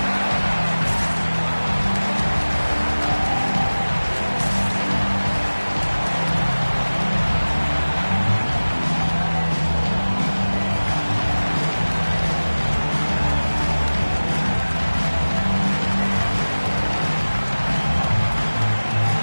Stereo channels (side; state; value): both; inverted; correlation -1.00